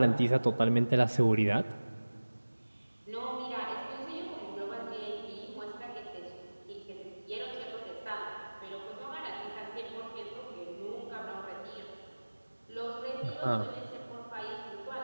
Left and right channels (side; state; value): both; inverted; correlation -1.00